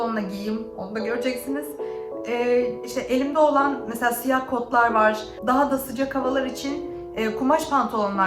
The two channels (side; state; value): both; identical; correlation 1.00